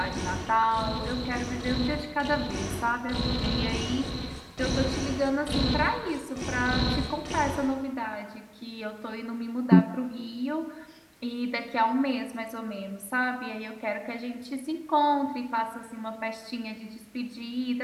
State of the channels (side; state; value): both; identical; correlation 1.00